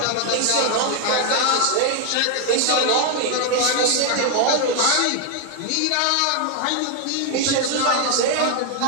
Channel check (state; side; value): different; both; correlation 0.00